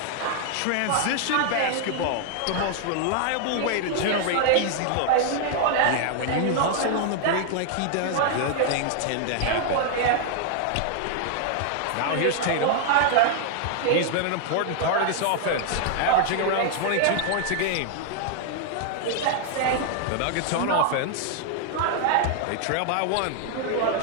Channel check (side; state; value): both; different; correlation 0.00